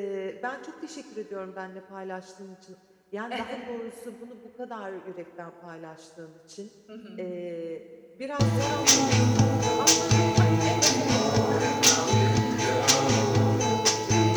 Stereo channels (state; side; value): identical; both; correlation 1.00